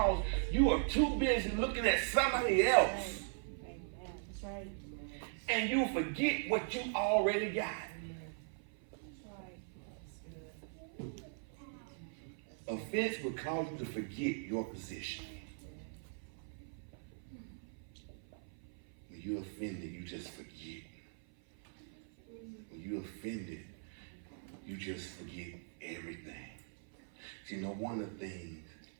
you are too busy looking at somebody else. That's right. And you forget what you already got. Offense will cause you to forget your position. When you're offended, you just forget. When you're offended, you just forget everything. See, no wonder things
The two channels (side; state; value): left; silent; 51 dB below the other